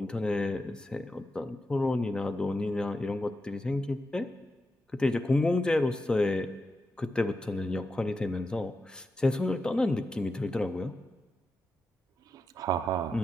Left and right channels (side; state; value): both; normal; correlation 0.88